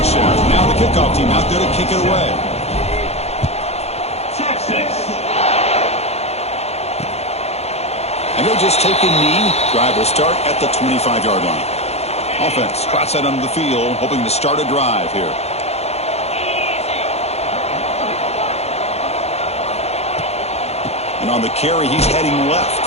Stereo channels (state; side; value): late; right; 0.31 ms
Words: Now the kickoff team out there to kick it away. And they'll just take a knee. Drive will start at the 25-yard line. Offense trots out onto the field, hoping to start a drive here. And on the carry, he's heading